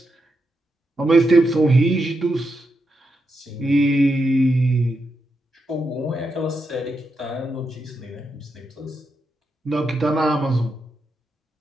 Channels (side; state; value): both; normal; correlation 0.84